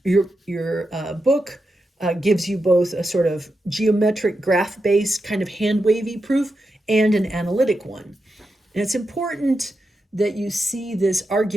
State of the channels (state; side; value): normal; both; correlation 0.88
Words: your book gives you both a sort of geometric graph-based kind of hand-wavy proof and an analytic one. And it's important that you see this